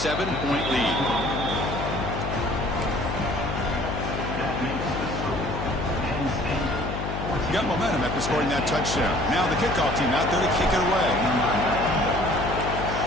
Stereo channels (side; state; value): left; noise; hum, 5 dB below the sound